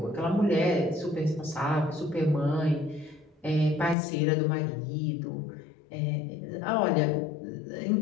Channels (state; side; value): drops out; right; at 4.0 s